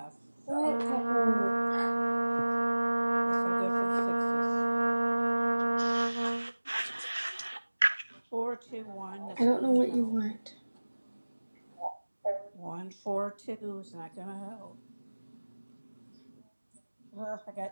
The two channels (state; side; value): inverted; both; correlation -1.00